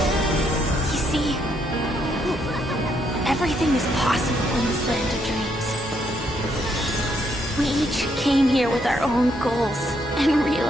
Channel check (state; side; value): normal; both; correlation 0.74